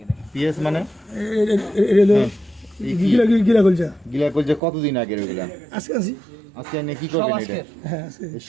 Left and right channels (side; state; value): left; drops out; at 4.6 s